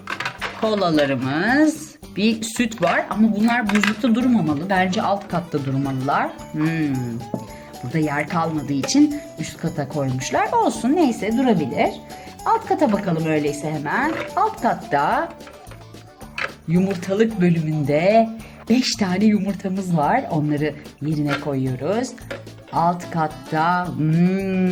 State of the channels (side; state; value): both; identical; correlation 1.00